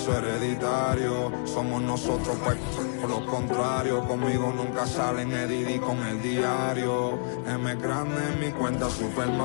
hereditario. Somos nosotros, pues, por lo contrario. Conmigo nunca salen Edidi con el diario. M grande en mi cuenta Super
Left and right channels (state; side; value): silent; right; digital silence